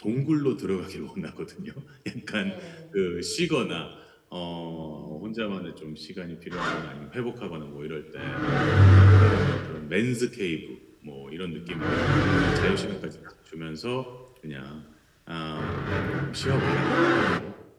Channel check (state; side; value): identical; both; correlation 1.00